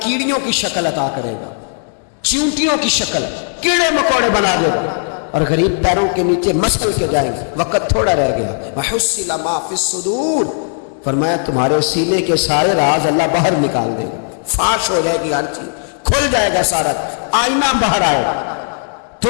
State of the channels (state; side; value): silent; right; 68 dB below the other